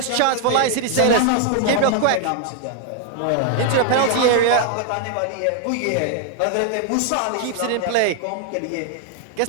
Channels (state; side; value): different; both; correlation 0.00